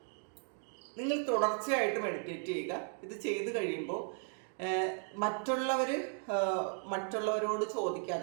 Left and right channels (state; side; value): silent; left; 54 dB below the other